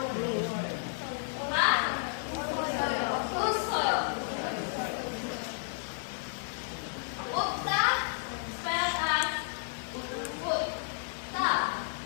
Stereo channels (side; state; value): right; silent; 56 dB below the other